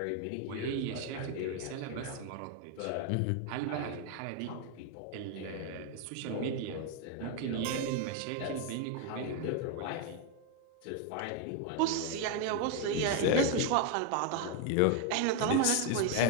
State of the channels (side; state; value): both; different; correlation 0.00